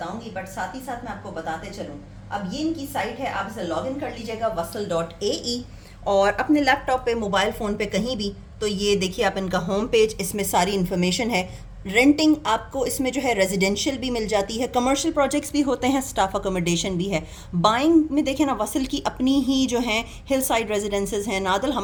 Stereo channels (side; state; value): both; identical; correlation 1.00